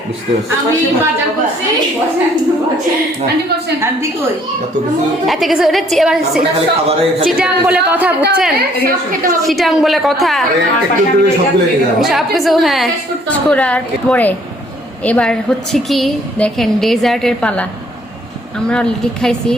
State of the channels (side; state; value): both; normal; correlation 0.62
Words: এত কিছু, চিটাং বলে কথা, বুঝছেন? চিটাং বলে কথা, সবকিছু। হ্যাঁ, করার পরে এবার হচ্ছে কি দেখেন, ডেজার্টের পালা। আমরা অলরেডি খাইছি,